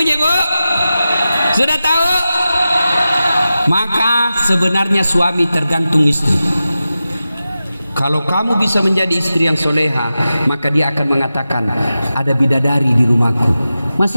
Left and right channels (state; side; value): inverted; both; correlation -0.93